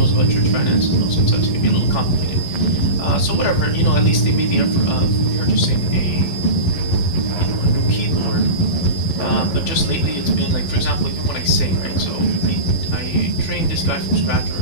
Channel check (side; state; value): right; late; 12 ms